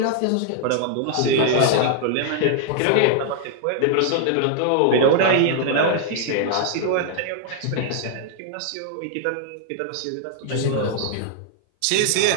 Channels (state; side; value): different; both; correlation 0.00